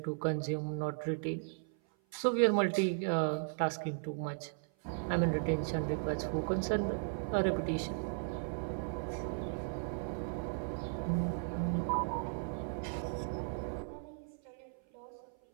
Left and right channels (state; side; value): silent; left; 54 dB below the other